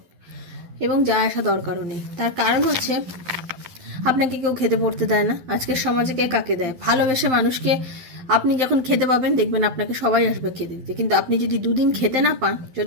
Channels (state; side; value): late; left; 12 ms